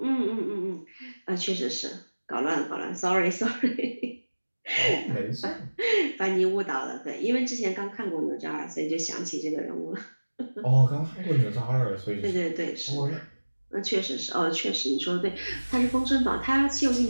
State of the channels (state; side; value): inverted; both; correlation -1.00